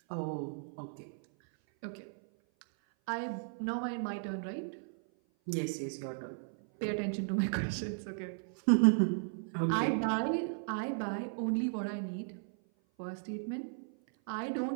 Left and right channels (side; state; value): left; silent; 54 dB below the other